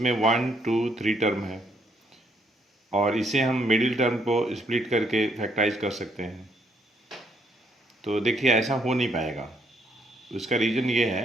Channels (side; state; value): both; normal; correlation 0.72